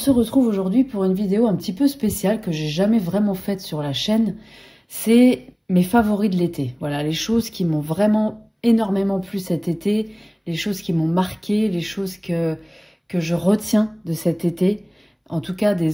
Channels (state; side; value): identical; both; correlation 1.00